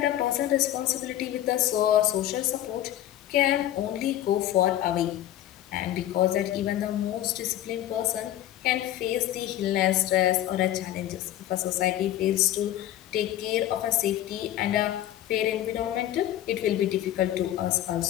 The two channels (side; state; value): right; quieter; 12.7 dB